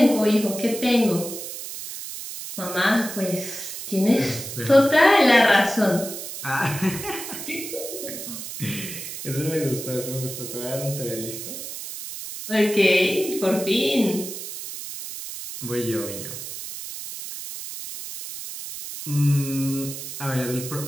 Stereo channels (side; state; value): right; noise; hiss, 9 dB below the sound